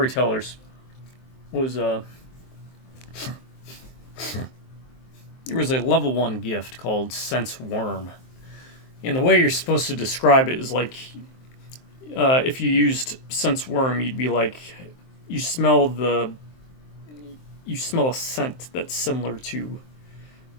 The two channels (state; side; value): late; right; 23 ms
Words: was there was a level 1 gift called Sense Worm. And the way you're supposed to describe it is like if you used Sense Worm, you'd be like, you smell a scent that's similar to